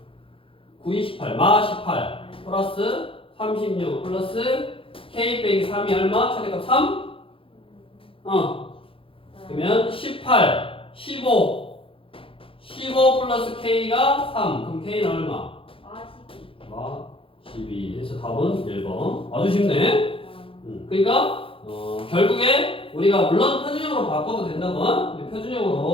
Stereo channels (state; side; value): late; right; 0.26 ms